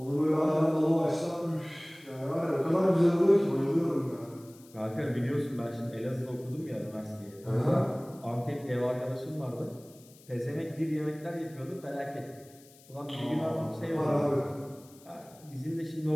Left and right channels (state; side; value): noise; left; hiss, 25 dB below the sound